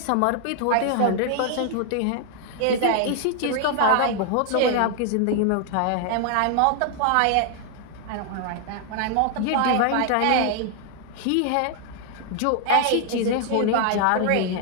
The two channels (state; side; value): different; both; correlation 0.00